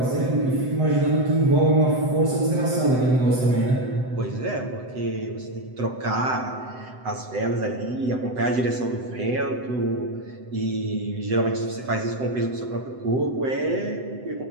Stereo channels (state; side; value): late; left; 7.8 ms